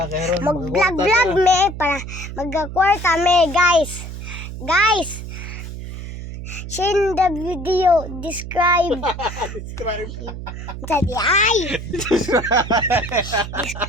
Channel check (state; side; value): noise; right; hum, 9 dB below the sound